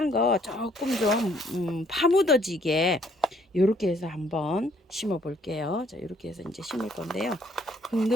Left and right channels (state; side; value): normal; both; correlation 0.65